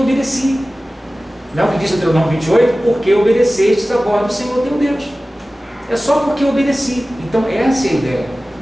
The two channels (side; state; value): both; normal; correlation 0.96